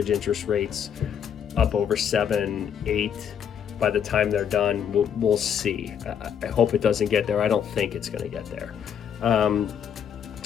interest rates up over 7, 8 by the time they're done? We'll see. I hope it doesn't get there. I don't think it's going to get there.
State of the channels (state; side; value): quieter; right; 8.2 dB